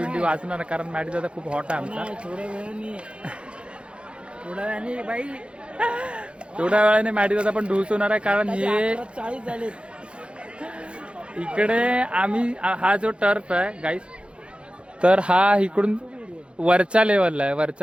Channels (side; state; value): left; late; 0.058 ms